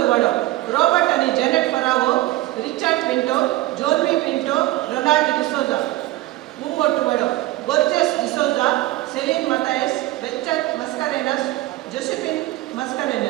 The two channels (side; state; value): left; quieter; 17.6 dB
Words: Vado, Robert and Janet Ferrao, Richard Pinto, Jorvi Pinto, Ronald D'Souza. Mumot Vado, Borges D'Souza, Celine Matthias, Richard Mascarenas, Josephine